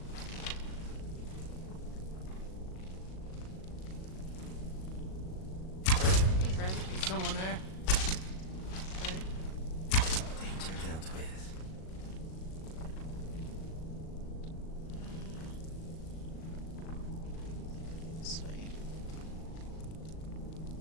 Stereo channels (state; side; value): late; right; 37 ms